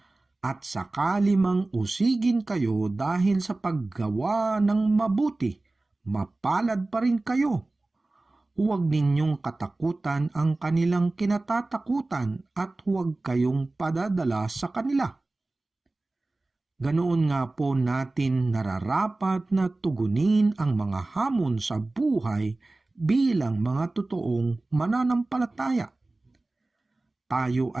at sakali mang usigin kayo dahil sa paggawa ng mabuti, mapalad pa rin kayo. Huwag ninyong katakutan ang kanilang kinatatakutan at huwag kayong padadala sa kanila. Ganoon nga po natin nararapat na tugunin ang mga hamon sa buhay bilang mga totoong mananampalataya. Tayo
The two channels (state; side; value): quieter; left; 3.0 dB